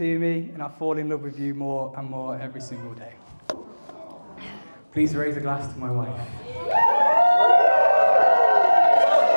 me and I fall in love with you more and more every single day. Please raise a glass to my wife.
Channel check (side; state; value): both; inverted; correlation -1.00